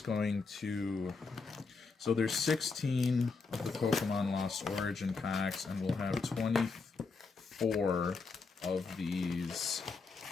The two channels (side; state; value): right; quieter; 4.5 dB